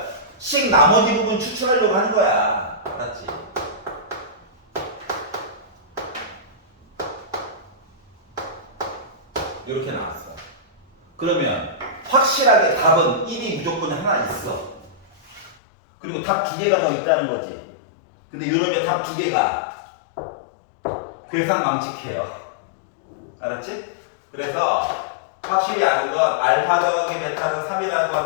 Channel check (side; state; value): right; drops out; at 15.6 s